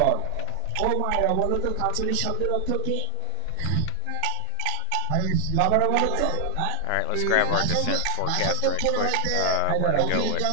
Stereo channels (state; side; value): different; both; correlation 0.00